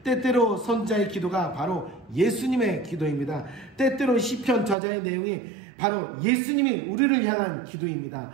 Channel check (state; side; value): drops out; left; at 4.8 s